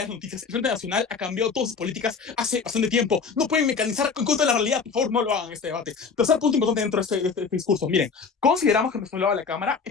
noticias. El Frente Nacional ha cambiado todas sus políticas hace bastante tiempo. No pueden mecanizar en contra de la realidad. Por favor, no lo hagan en este debate. Tercer punto importante dentro de este discurso. Miren, consideramos que nuestro lado de la Cámara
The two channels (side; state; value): right; quieter; 5.3 dB